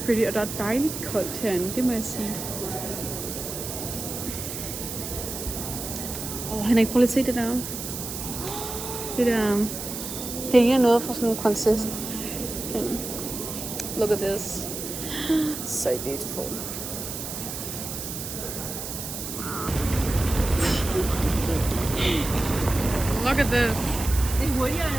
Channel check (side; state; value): right; noise; hiss, 7 dB below the sound